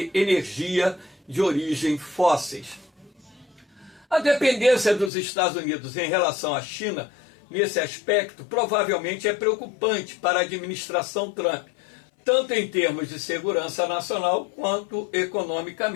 energia de origem fósseis. A dependência dos Estados Unidos em relação à China, nesse aspecto, provavelmente é preocupante para a administração Trump, tanto em termos de segurança nacional quanto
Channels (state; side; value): drops out; right; at 5.1 s